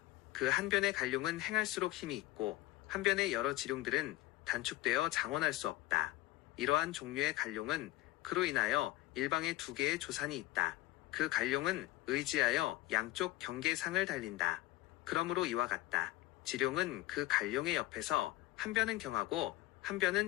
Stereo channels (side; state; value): right; quieter; 17.9 dB